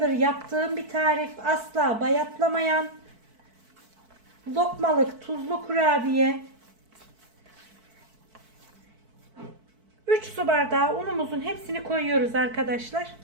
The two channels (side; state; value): left; late; 4.5 ms